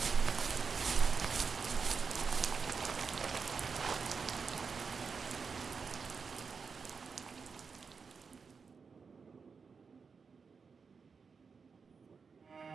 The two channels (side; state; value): left; quieter; 5.4 dB